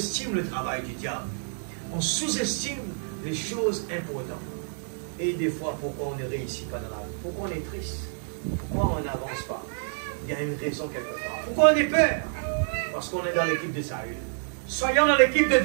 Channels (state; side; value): silent; left; 59 dB below the other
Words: le travail du diable. On sous-estime les choses importantes. Et des fois, pourquoi on ne réussit pas dans la vie? Pourquoi on est triste? Pourquoi on n'avance pas? Il y a une raison quelque part. Pourquoi on est peur? Parce qu'on est dans l'équipe de Saül. Soyons dans l'équipe de